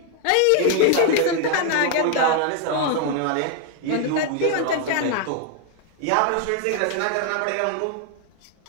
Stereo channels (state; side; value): different; both; correlation 0.00